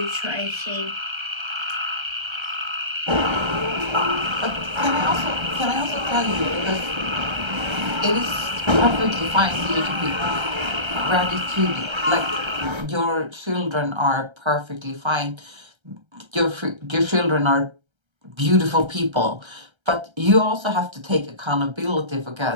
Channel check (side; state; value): left; late; 1.3 ms